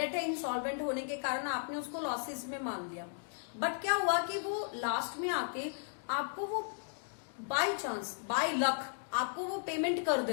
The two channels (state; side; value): silent; right; digital silence